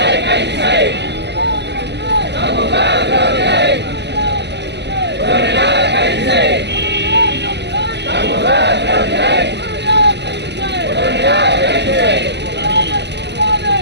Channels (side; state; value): left; late; 0.50 ms